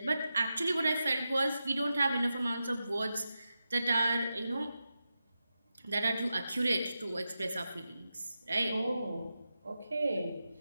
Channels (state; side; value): inverted; both; correlation -0.90